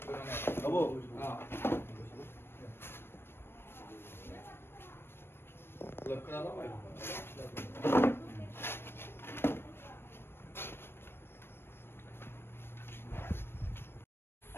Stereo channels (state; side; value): late; right; 0.11 ms